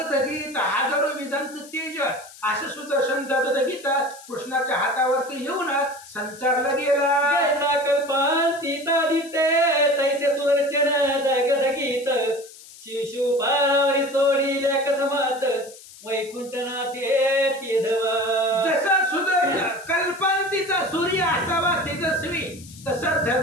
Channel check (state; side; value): noise; left; hiss, 19 dB below the sound